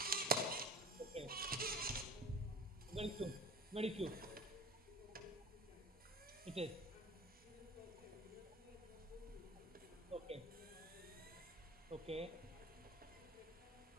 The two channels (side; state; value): both; normal; correlation 0.38